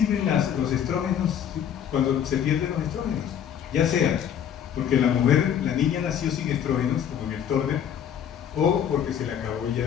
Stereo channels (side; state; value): right; quieter; 9.1 dB